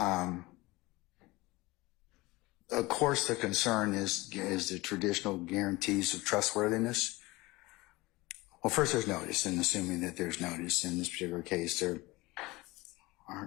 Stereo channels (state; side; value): quieter; right; 21.5 dB